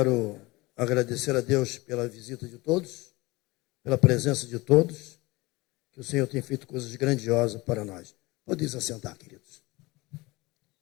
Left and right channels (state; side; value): quieter; right; 22.4 dB